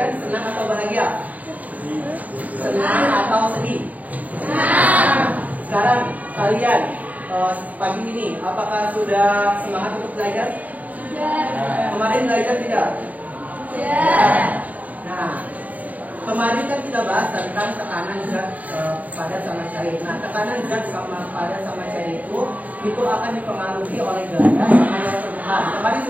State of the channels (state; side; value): late; left; 0.074 ms